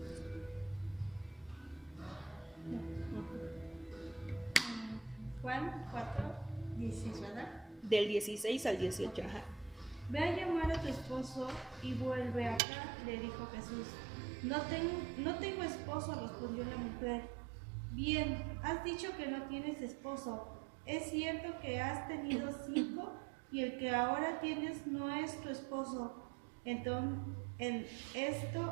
Juan 4, 16, ¿verdad? Del 16 al 18, ajá. Ve a llamar a tu esposo y vuelve acá, le dijo Jesús. No tengo esposo, respondió la mujer. Bien, has dicho que no tienes esposo. Es cierto que has tenido 5 y el que ahora tienes no es tu esposo. Entonces, en esto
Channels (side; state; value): left; drops out; at 12.6 s